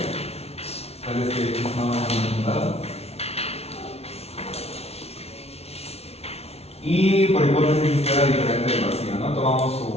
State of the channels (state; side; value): late; right; 0.30 ms